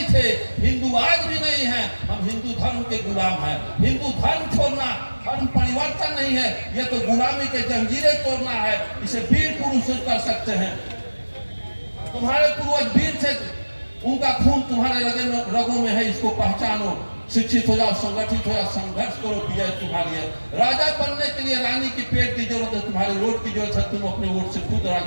थे, हिंदू आज भी नहीं है, हम हिंदू धर्म के गुलाम हैं। हिंदू धर्म छोड़ना धर्म परिवर्तन नहीं है, यह तो गुलामी के जंजीरें तोड़ना है। इसे वीर पुरुष कर सकते हैं। तुम्हारे पूर्वज वीर थे, उनका खून तुम्हारे रगों में है, इसको पहचानो। शिक्षित हो जाओ, संगठित हो जाओ, संघर्ष करो, विजय तुम्हारी है। राजा बनने के लिए रानी की पेट की जरूरत है, तुम्हारे वोट की जरूरत है, तुम अपने वोट से खुद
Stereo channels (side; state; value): both; inverted; correlation -1.00